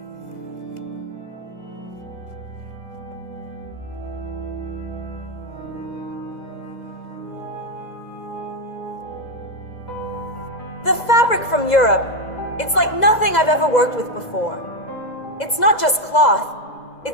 The fabric from Europe, it's like nothing I've ever worked with before. It's not just cloth,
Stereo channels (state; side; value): late; right; 2.0 ms